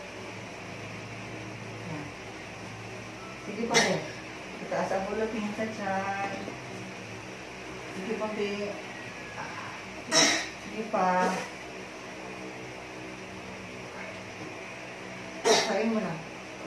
Sige pa be. Itaas ang ulo, tingin sa tiyan. Sige pa be. Sige pa. Kain mo na.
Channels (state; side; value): identical; both; correlation 1.00